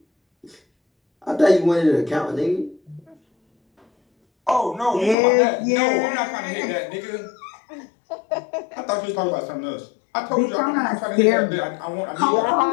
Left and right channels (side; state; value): right; drops out; at 5.2 s